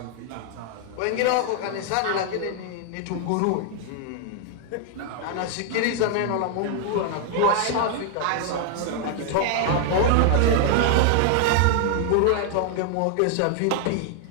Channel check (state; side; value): different; both; correlation 0.00